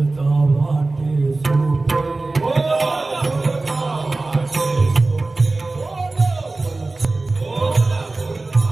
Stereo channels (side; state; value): left; quieter; 3.3 dB